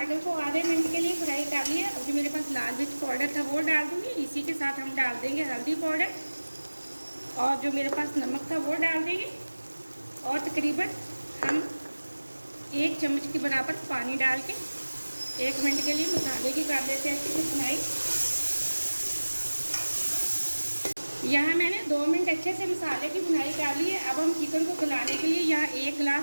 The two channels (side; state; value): both; inverted; correlation -1.00